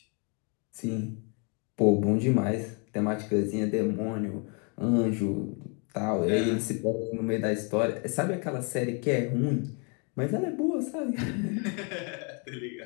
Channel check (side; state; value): right; quieter; 36.0 dB